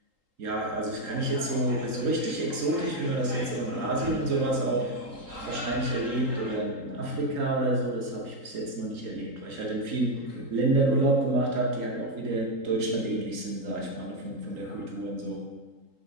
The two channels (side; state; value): left; late; 3.8 ms